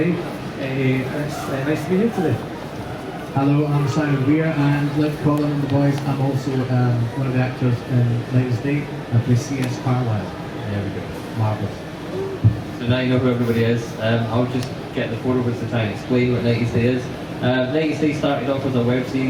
It's nice to be here today. Hello, I'm Simon Weir, and like Colin and the boys, I'm also one of the actors in 90s Day. I play C.S. Carlisle. There we go. Marvellous. So now you know who everybody is. I'll just get the 4 of us to try and explain what 90s Day is. 90s Day started off as a web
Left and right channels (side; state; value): both; identical; correlation 1.00